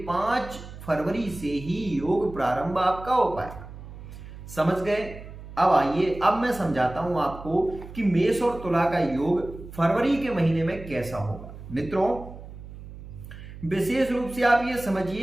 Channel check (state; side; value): noise; right; hum, 14 dB below the sound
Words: 5 फरवरी से ही योग प्रारंभ आपका हो पाएगा। समझ गए? अब आइए, अब मैं समझाता हूं आपको कि मेष और तुला का योग फरवरी के महीने में कैसा होगा। मित्रों विशेष रूप से आप ये